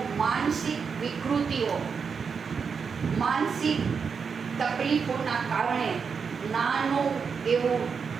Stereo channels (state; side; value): quieter; left; 5.9 dB